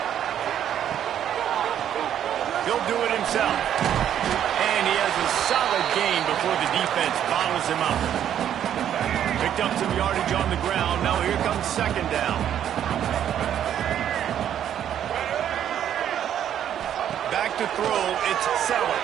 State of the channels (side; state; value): left; quieter; 10.1 dB